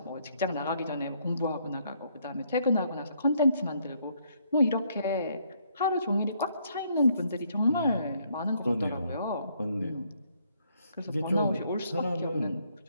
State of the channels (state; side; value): inverted; both; correlation -0.70